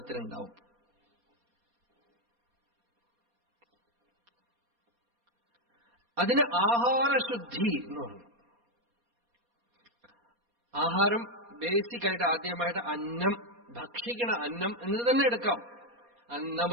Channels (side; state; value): left; late; 4.2 ms